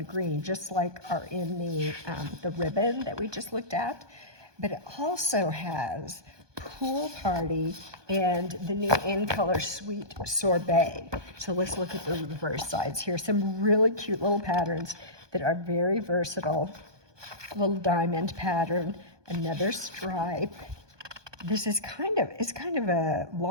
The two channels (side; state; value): left; late; 1.2 ms